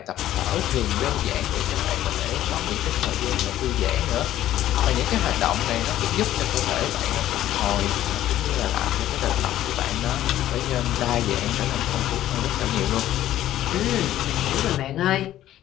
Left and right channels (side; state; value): right; quieter; 13.1 dB